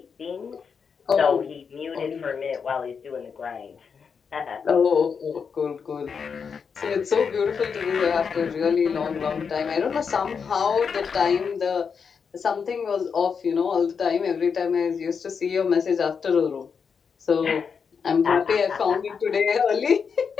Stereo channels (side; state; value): right; quieter; 6.1 dB